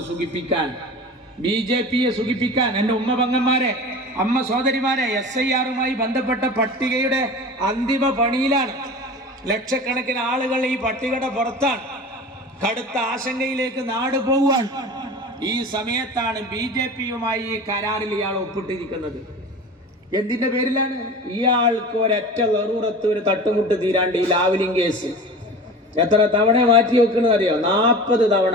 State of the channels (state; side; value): normal; both; correlation 0.35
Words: സുഖിപ്പിക്കാൻ, BJPയെ സുഖിപ്പിക്കാൻ, എൻ്റെ ഉമ്മ പങ്ങന്മാരെ, അമ്മ സഹോദരിമാരെ, SIRമായി ബന്ധപ്പെട്ട പട്ടികയുടെ അന്തിമ പണിയിലാണ്. ലക്ഷക്കണക്കിന് ആളുകൾ ഈ പട്ടികയുടെ പുറത്താണ്. കടുത്ത ആശങ്കയിലേക്ക് നാട് പോവുകയാണ്. ഈ സമയത്താണ് BJPയുമായി ഈ കരാറിൽ ഇയാൾ ഒപ്പിട്ടിരിക്കുന്നത്. എന്തിന്റെ പേരിലാണ്? ഇയാൾക്ക് ഒരൊറ്റ നെറൂറത്ത് ഒരു തട്ടുമുട്ട് തീരാണ്ട് ഈ ലാവ്ലിംഗ് കേസ് എത്ര തവണ മാറ്റി വെക്കുന്നത് അറിയോ? 40 തവണ.